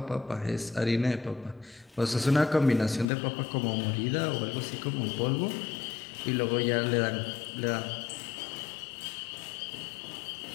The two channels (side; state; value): right; drops out; at 3.1 s